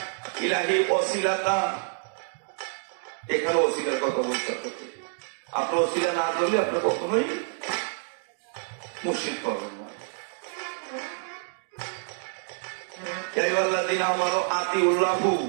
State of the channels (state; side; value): silent; left; 60 dB below the other